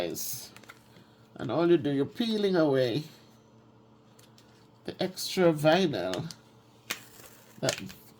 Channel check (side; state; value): both; identical; correlation 1.00